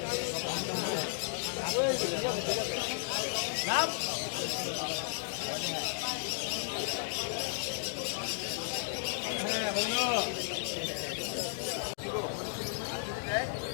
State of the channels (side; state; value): right; silent; digital silence